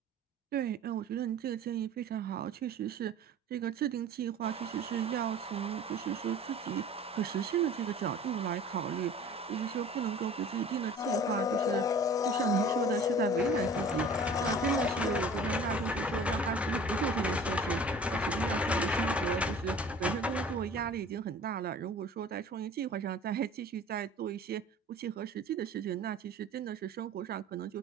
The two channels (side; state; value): both; normal; correlation 0.45